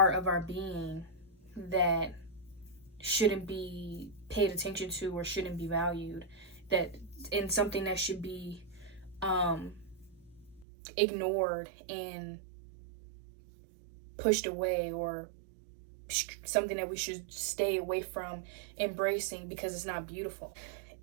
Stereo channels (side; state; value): left; drops out; at 10.7 s